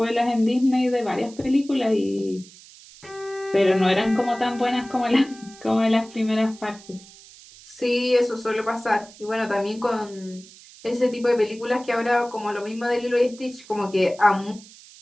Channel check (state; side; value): noise; right; hiss, 21 dB below the sound